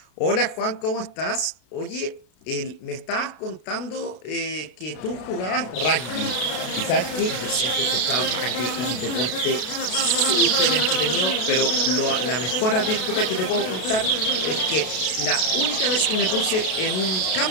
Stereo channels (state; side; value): late; right; 33 ms